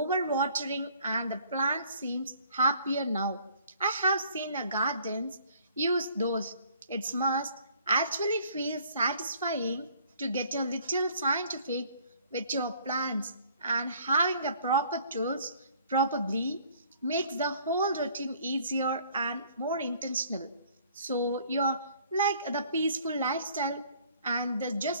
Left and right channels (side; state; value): both; inverted; correlation -0.57